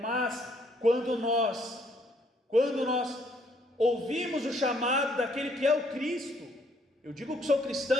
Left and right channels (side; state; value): both; normal; correlation 0.67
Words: mas quando nós ouvimos o chamado daquele que é o Cristo, eu digo que sou